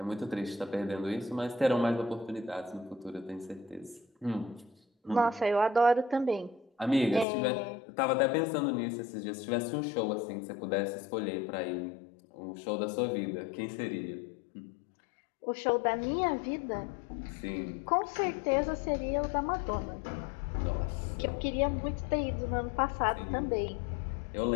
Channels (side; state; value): right; drops out; at 7.2 s